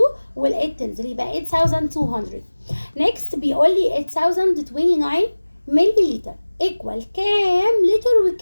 وال8 تنزل يبقى 8200. next بيقول لي 8029 ملي لتر ايكوال كام لتر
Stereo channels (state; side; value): inverted; both; correlation -1.00